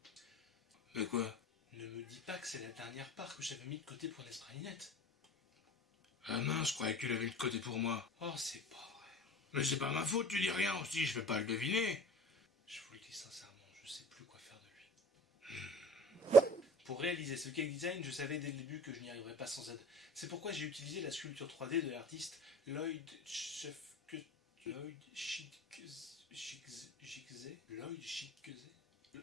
Mais quoi? Ne me dis pas que c'est la dernière part que j'avais mis de côté pour Nespresso. Ah mince, je croyais que tu l'avais mis de côté pour moi. Oh, c'est pas vrai. Mais c'est pas ma faute, tu dis rien aussi, je vais pas le deviner. Je vous le dis sincèrement, je sais plus quoi faire de lui. Pour réaliser ce cake design, je savais dès le début que je n'y arriverais pas sans aide. C'est pourquoi j'ai utilisé la sculpture 3D de l'artiste Lloyd Schickze. Lloyd Schickze. Lloyd Schickze.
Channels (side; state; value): both; normal; correlation 0.42